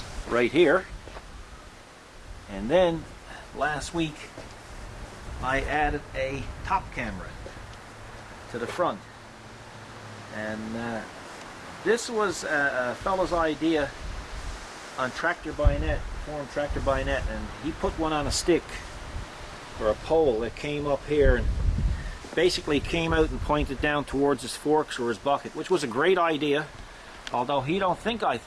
right here. And then last week I added a top camera to the front, and this was a fellow's idea on Tractor by Net, forum Tractor by Net, and he put one on a stick or a pole that came up here and basically came out and pointed down towards his forks or his bucket, which was a great idea, although he don't think I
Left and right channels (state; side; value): identical; both; correlation 1.00